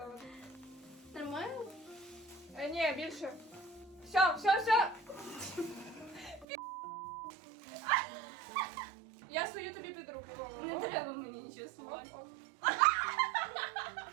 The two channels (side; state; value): left; drops out; at 6.5 s